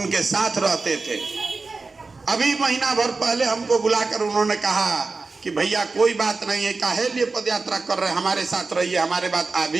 साथ रहते थे। अभी महीना भर पहले हमको बुलाकर उन्होंने कहा कि भैया कोई बात नहीं है, काहे लिए पद यात्रा कर रहे हैं, हमारे साथ रहिए, हमारे बात आदि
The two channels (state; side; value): quieter; left; 3.9 dB